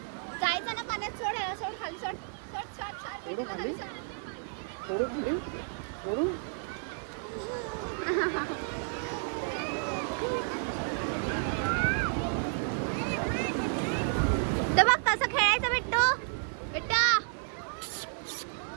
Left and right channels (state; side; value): silent; left; 57 dB below the other